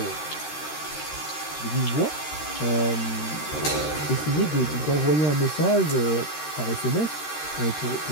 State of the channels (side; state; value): right; late; 13 ms